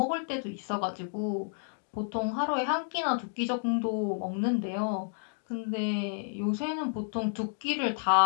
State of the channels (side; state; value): right; silent; digital silence